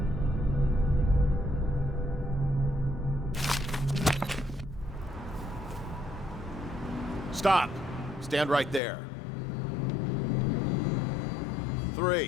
Stop. Stand right there.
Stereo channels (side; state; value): right; drops out; at 8.8 s